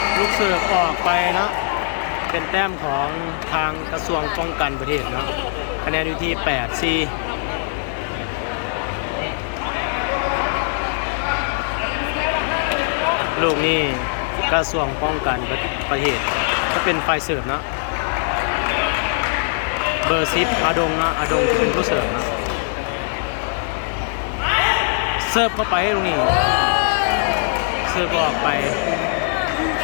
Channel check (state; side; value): silent; right; 65 dB below the other